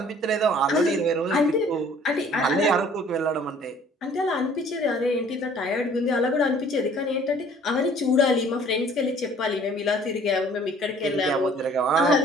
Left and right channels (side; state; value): both; normal; correlation 0.54